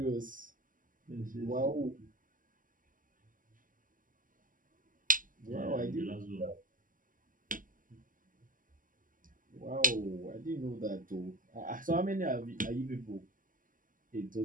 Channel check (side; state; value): left; late; 0.39 ms